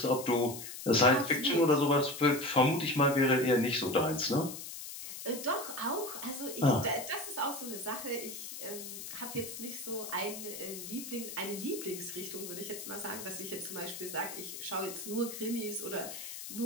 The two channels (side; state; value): left; noise; hiss, 9 dB below the sound